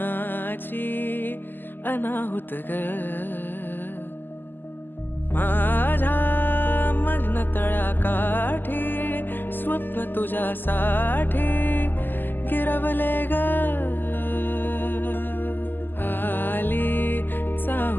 अनाहुत ग माझ्या मग्न तळाकाठी स्वप्न तुझ्यासाठी गिरवले ग आली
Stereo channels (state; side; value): late; right; 0.092 ms